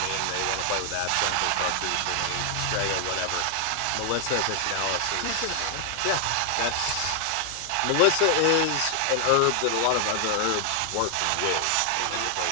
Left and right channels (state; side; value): different; both; correlation 0.00